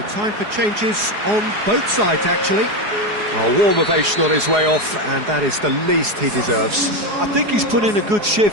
time for changes on both sides, actually. A warm ovation on his way off, and that is the least he deserves. I think he's put in a good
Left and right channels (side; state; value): left; late; 4.8 ms